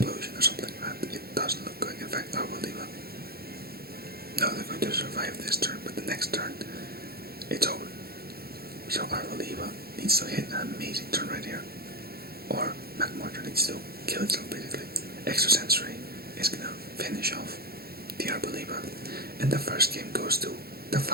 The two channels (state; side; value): late; left; 0.45 ms